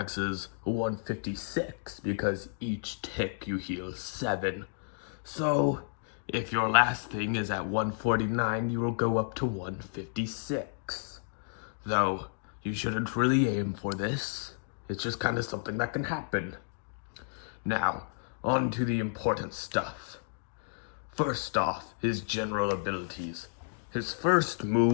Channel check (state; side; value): silent; right; digital silence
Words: is 156 because each tick you heal 7. So, if your last thing is at 149, you will go up to 156. Though, you shouldn't really aim for this. It's just kind of something that can happen. Now, on to the important stuff. First off, his general abilities. His first